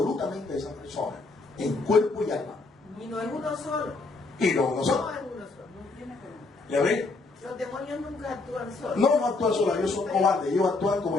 a esa persona, en cuerpo y alma. Y no es uno solo. Y no No nosotros. es uno solo. No tiene que... ¿Ya ven? Los demonios nunca actúan solos. No, no actúan solos, ellos son cobardes. Ellos actúan, como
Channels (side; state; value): right; quieter; 3.6 dB